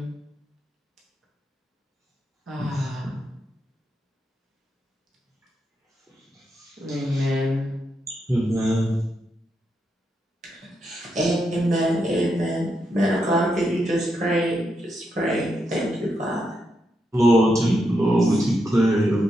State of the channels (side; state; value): both; normal; correlation 0.83